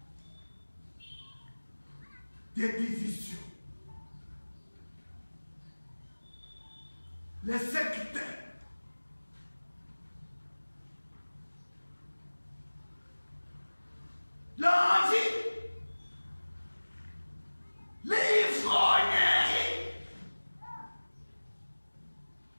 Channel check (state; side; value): inverted; both; correlation -1.00